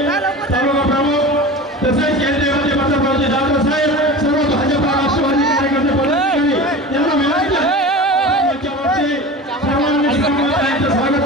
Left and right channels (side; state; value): both; normal; correlation 0.33